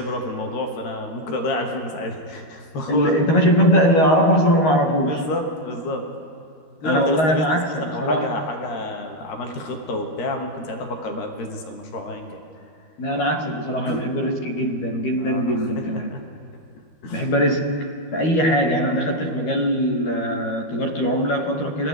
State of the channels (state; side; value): late; right; 13 ms